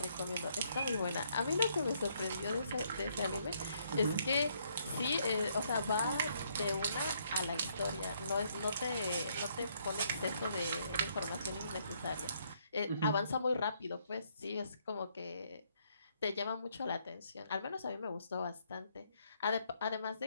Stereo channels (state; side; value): inverted; both; correlation -0.70